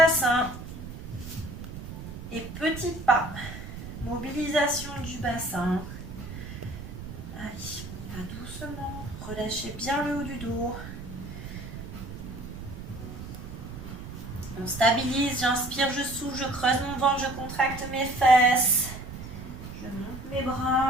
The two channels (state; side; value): noise; right; rumble, 10 dB below the sound